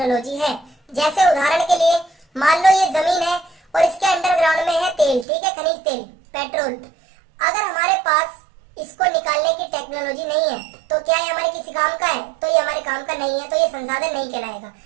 है। जैसे उदाहरण के लिए मान लो ये जमीन है और इसके अंडरग्राउंड में है तेल, ठीक है, खनिज तेल, पेट्रोल। अगर हमारे पास इसको निकालने की टेक्नोलॉजी नहीं है तो क्या ये हमारे किसी काम का है? तो ये हमारे काम का नहीं है, तो ये संसाधन नहीं कहलाएगा।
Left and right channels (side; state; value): left; drops out; at 5.2 s